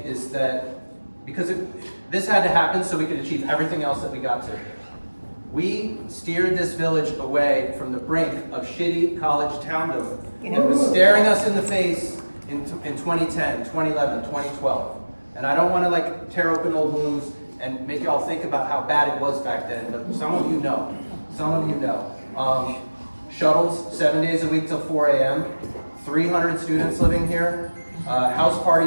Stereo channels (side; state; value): both; inverted; correlation -1.00